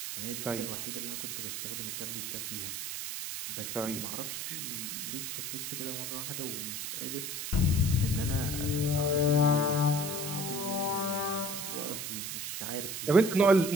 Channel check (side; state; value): right; noise; hiss, 4 dB below the sound